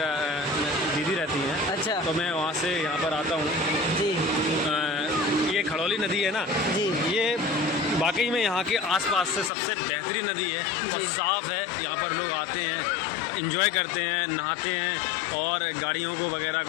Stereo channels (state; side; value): drops out; right; at 9.5 s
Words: दीदी रहती हैं। अच्छा। तो मैं वहाँ से यहाँ पर आता हूँ। जी ये खड़ौली नदी है ना जी। ये वाकई में यहाँ के आसपास से सबसे बेहतरीन नदी है और साफ़ है। यहाँ पर लोग आते हैं, एंजॉय करते हैं, नहाते हैं और गाड़ियों को वगैरह